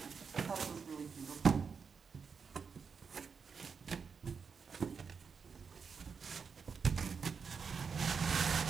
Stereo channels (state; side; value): quieter; left; 5.8 dB